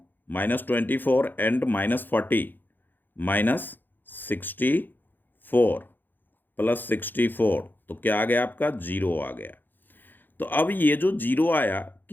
-24 एंड -40 -64 +64, तो क्या आ गया आपका 0 आ गया। तो अब ये जो 0 आया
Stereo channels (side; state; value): right; late; 0.091 ms